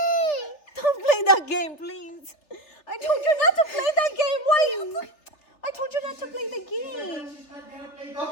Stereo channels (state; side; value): late; right; 3.3 ms